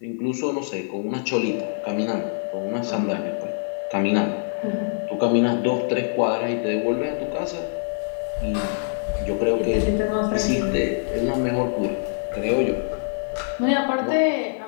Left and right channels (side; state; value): right; silent; 55 dB below the other